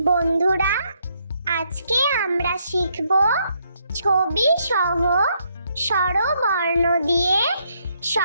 বন্ধুরা, আজকে আমরা শিখব ছবি সহ স্বরবর্ণ দিয়ে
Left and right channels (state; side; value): inverted; both; correlation -0.74